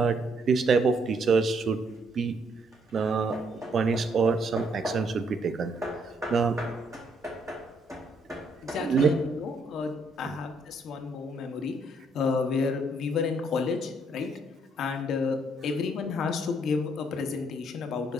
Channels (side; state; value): both; normal; correlation 0.71